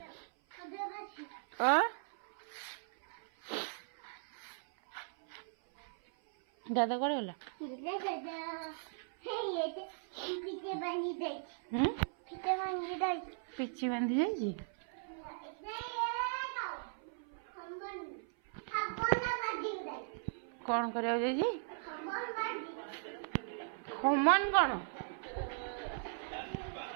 दादा कड़े गला पिछी बांधी जाइए कौन करा खमन कौन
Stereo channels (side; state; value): left; silent; 52 dB below the other